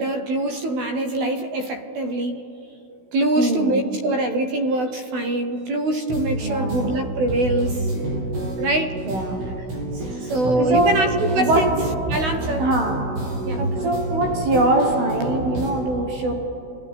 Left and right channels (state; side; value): late; left; 16 ms